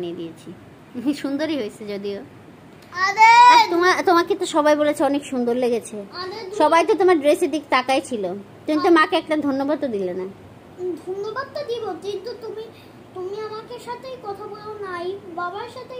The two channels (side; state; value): both; identical; correlation 1.00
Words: দিয়েছি। সুন্দরই হয়েছে যদিও। আরে তোমাকে তো সবাই বলেছে অনেক সুন্দর লেগেছে। সবাই তো তোমার ড্রেসের দিক তাকাই ছিল। তুমি তো মাকে একটা ধন্যবাদ তো দিলে না। ধন্যবাদটা দিব, কিন্তু তুমি আমাকে সাথেই কথা বলো নাই, বাবার সাথেই